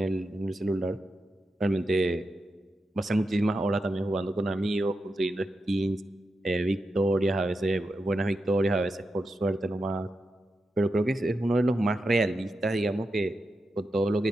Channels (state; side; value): normal; both; correlation 0.88